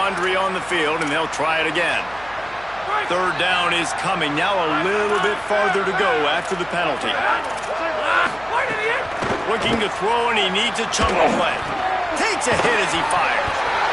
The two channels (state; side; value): noise; right; hum, 22 dB below the sound